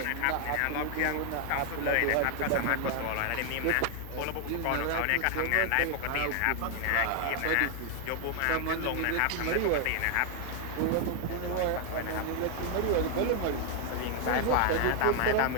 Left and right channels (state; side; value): different; both; correlation 0.00